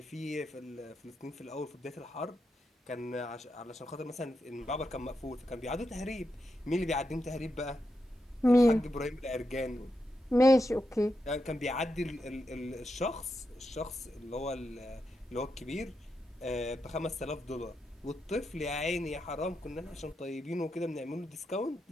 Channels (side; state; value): both; normal; correlation 0.86